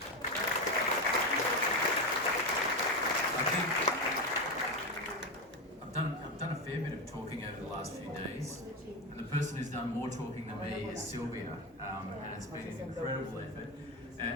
I think I've done a fair bit of talking over the last few days, and the person who's done more talking than me is Sylvia, and it's been an incredible effort.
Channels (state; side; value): normal; both; correlation 0.15